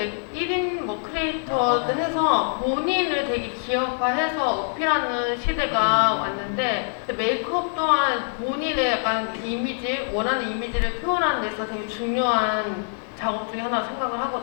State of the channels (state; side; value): silent; right; 62 dB below the other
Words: 1인 뭐 크리에이터들 해서 본인을 되게 기업화해서 어필하는 시대가 왔는데, 메이크업 또한 본인의 약간 이미지, 원하는 이미지를 표현하는 데 있어서 되게 중요한 작업 중에 하나 생각을